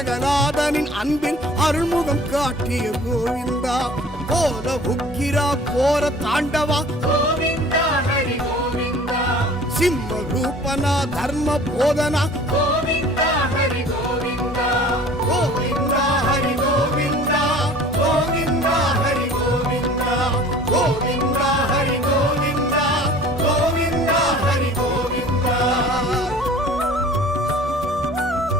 அன்பில் அருள்முகம் காட்டிய கோவிந்தா. கோல உக்கிரா கோர தாண்டவா கோவிந்தா ஹரி கோவிந்தா சிம்ம ரூபனா தர்ம போதனா கோவிந்தா ஹரி கோவிந்தா கோவிந்தா ஹரி கோவிந்தா கோவிந்தா ஹரி கோவிந்தா கோவிந்தா ஹரி கோவிந்தா கோவிந்தா ஹரி கோவிந்தா.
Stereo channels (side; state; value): both; normal; correlation 0.47